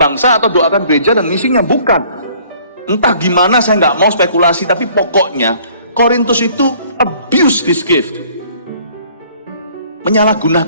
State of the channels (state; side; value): inverted; both; correlation -0.56